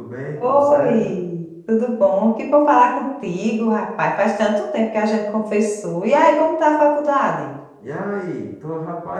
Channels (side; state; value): both; identical; correlation 1.00